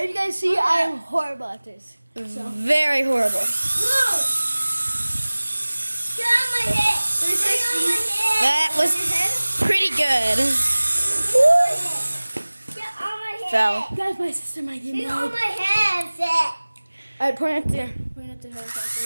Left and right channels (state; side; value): inverted; both; correlation -1.00